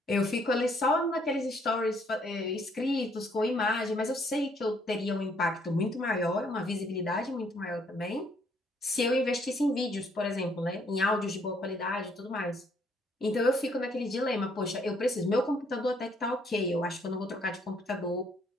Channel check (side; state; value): both; normal; correlation 0.67